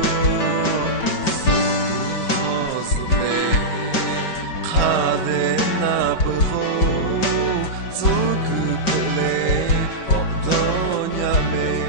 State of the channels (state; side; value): late; right; 5.2 ms